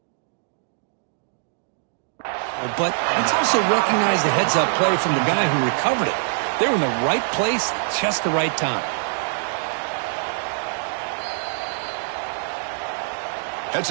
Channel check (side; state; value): left; silent; digital silence